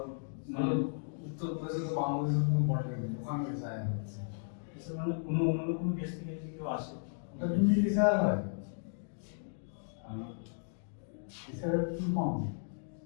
মানে উত্তরপ্রদেশে তো বাংলাদেশের কোনো বর্ডার নেই, ওখানে এসআই হচ্ছে। মানে অন্য কোনো দেশ থেকে যদি কেউ আসে ওটা তুমি এসআই হয় এসআই কি কম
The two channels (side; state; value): right; silent; digital silence